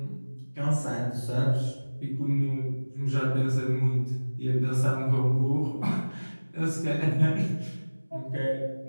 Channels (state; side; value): inverted; both; correlation -1.00